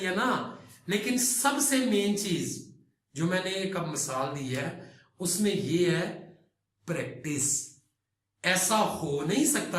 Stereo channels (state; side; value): identical; both; correlation 1.00